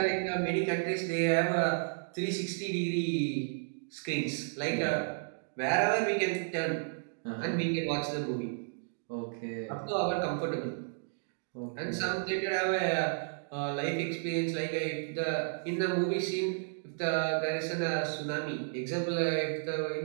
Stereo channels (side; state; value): left; silent; digital silence